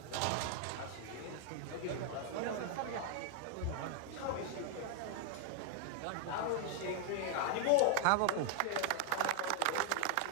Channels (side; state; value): both; different; correlation 0.00